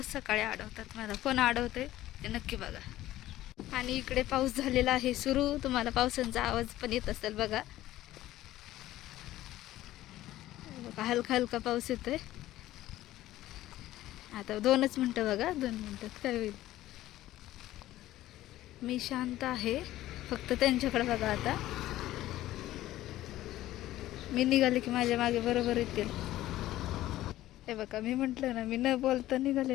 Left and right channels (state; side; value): quieter; right; 14.9 dB